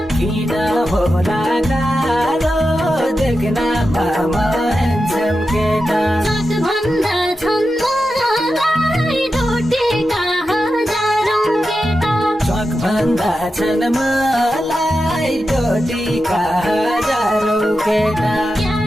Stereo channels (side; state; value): both; normal; correlation 0.90